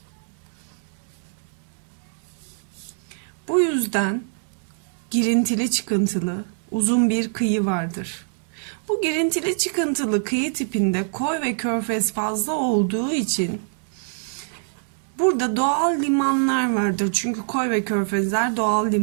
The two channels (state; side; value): silent; left; 62 dB below the other